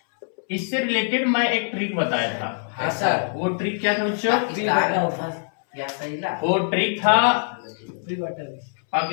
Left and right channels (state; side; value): silent; right; 63 dB below the other